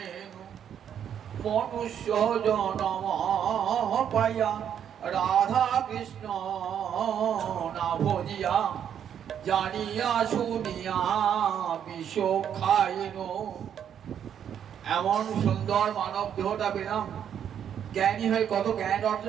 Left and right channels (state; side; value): quieter; left; 9.0 dB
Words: মনুষ্য জনম পাইয়া রাধা কৃষ্ণ না ভজিয়া, জানিয়া শুনিয়া বিষ খাইনু। এমন সুন্দর মানব দেহটা পেলাম, জ্ঞানী হয়ে কত জ্ঞান